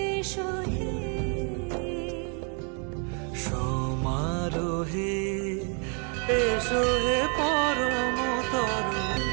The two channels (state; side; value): quieter; left; 38.5 dB